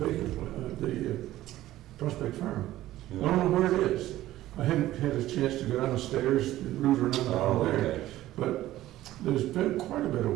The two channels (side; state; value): left; quieter; 14.9 dB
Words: Prospect Farm. I don't know where it is. I hadn't had a chance to go downstairs and root around Oh, down there. okay. But there's been quite a bit of